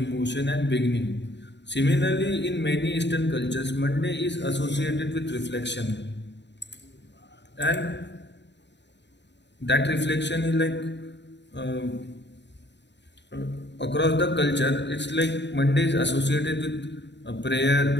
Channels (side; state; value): right; late; 0.51 ms